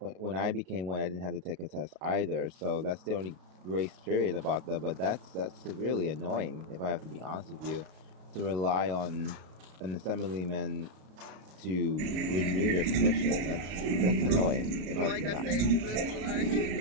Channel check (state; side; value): late; left; 33 ms